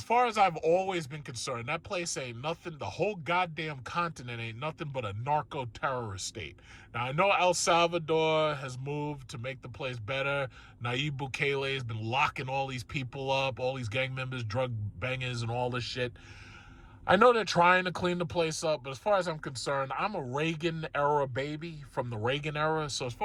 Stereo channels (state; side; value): identical; both; correlation 1.00